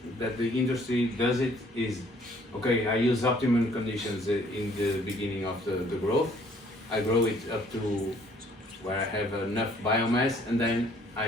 the industry does it is, okay, I use optimum conditions in the beginning of the growth. I grow it up to where I have enough biomass, and then I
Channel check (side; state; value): both; normal; correlation 0.60